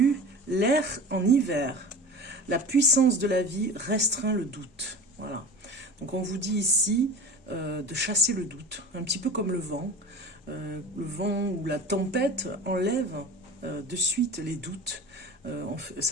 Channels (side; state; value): both; normal; correlation 0.34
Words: l'air en hiver. La puissance de la vie restreint le doute. Voilà. Donc on vous dit ici de chasser le doute, un petit peu comme le vent. Le vent ou la tempête enlève de suite les doutes.